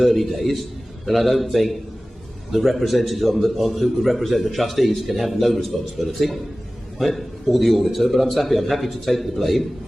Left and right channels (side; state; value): both; normal; correlation 0.97